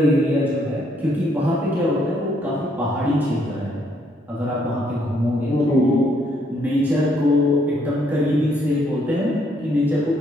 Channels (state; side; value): normal; both; correlation 0.70